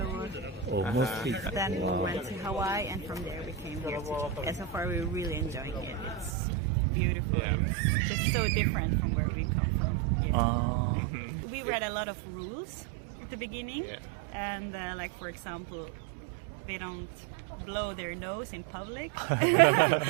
Mostly. Then we went to Hawaii, and from there we came here. And so far we're really enjoying it. It's beautiful. Yeah. It's just so different from where we come from. Yeah. We read a lot of rules at the beginning, and like for example, they don't blow their nose in public,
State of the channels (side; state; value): left; drops out; at 6.3 s